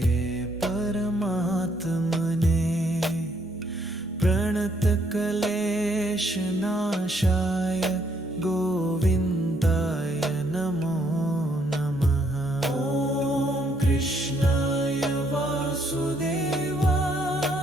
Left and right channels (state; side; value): normal; both; correlation 0.70